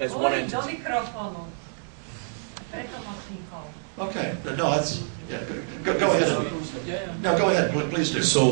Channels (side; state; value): left; silent; digital silence